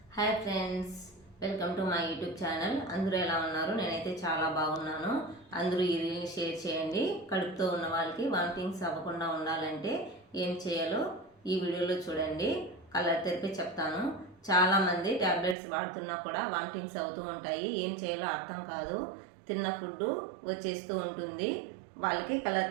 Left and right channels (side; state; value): left; drops out; at 15.6 s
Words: Hi friends, welcome to my YouTube channel. అందరూ ఎలా ఉన్నారు? నేనైతే చాలా బాగున్నాను. అందరూ ఈ రీల్ని షేర్ చేయండి. కడుపుతో ఉన్న వాళ్ళకి వామిటింగ్స్ అవ్వకుండా ఉండాలంటే ఏం చేయాలో ఈ వీడియోలో చూడండి. కలర్ తెరిపి చెప్తాను. చాలామంది ట్యాబ్లెట్స్ వాడుతున్నా కూడా వామిటింగ్స్ అవుతూ ఉంటాయి. ఏం చేయాలో అర్థం కాదు. తిన్న ఫుడ్ వచ్చేస్తూ ఉంటుంది. వాళ్ళకి కలర్